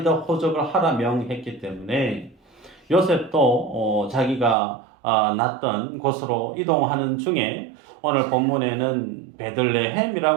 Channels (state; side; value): drops out; left; at 4.5 s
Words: 다 호적을 하라 명했기 때문에 요셉도 자기가 났던 곳으로 이동하는 중에 오늘 본문에는